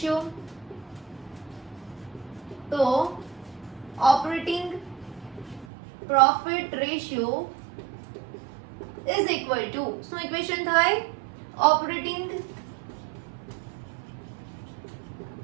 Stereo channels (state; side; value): drops out; left; at 5.7 s